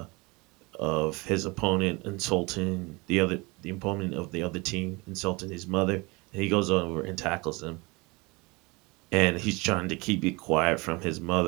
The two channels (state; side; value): quieter; left; 25.7 dB